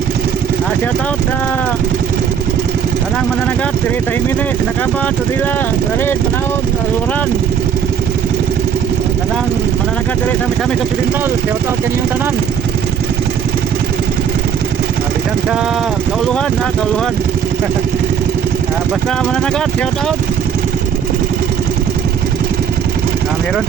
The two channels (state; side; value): quieter; left; 7.9 dB